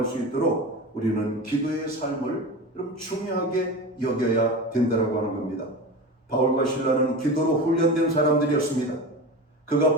수 있도록 우리는 기도의 삶을 여러분 중요하게 여겨야 된다고 하는 겁니다. 바울과 실라는 기도로 훈련된 사람들이었습니다. 그가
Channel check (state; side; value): normal; both; correlation 0.28